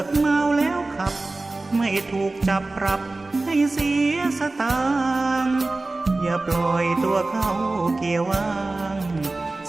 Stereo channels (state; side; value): quieter; left; 3.2 dB